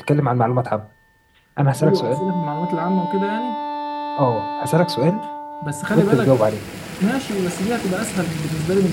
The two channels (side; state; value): both; identical; correlation 1.00